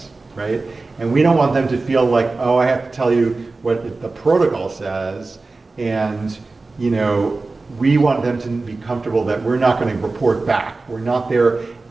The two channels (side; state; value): left; quieter; 3.6 dB